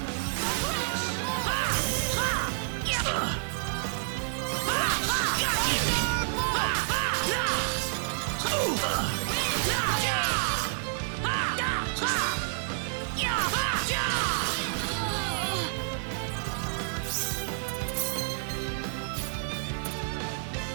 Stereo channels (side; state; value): left; silent; digital silence